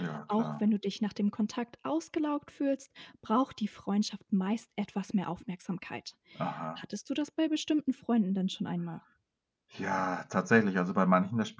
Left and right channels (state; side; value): identical; both; correlation 1.00